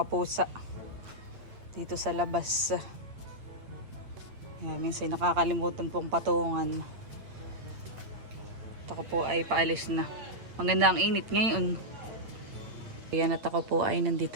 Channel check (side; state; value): left; late; 8.8 ms